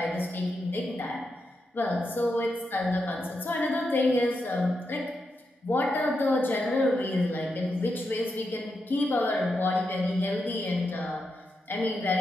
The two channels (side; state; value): both; normal; correlation 0.85